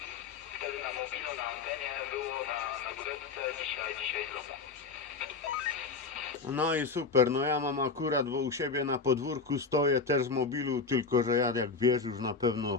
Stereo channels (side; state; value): right; quieter; 4.6 dB